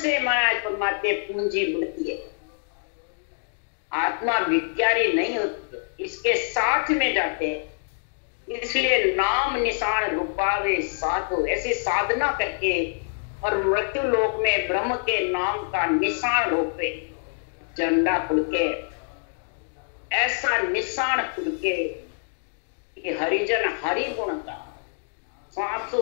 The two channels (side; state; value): right; silent; digital silence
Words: महाराज परमात्मा पूंजी बढ़ती है, आत्मा भिखारी नहीं होती, इसके साथ में जाते हैं। इसलिए नाम निशान रूपावे साधु, ऐसी साधना करके और मृत्यु लोक में ब्रह्म के नाम का निशान रूपे झंडा फुड़के, ऐसा निशान फुड़के कि हरिजन हरि गुण का